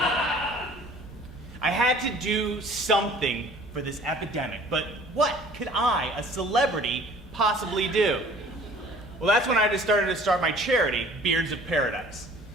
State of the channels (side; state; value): both; normal; correlation 0.50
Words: I had to do something for this epidemic, but what could I, a celebrity, possibly do? Well, that's when I just started to start my charity, Beards of Paradise.